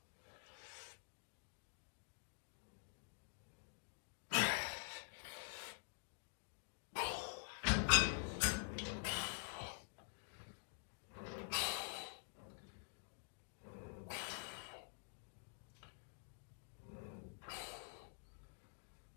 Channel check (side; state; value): right; silent; digital silence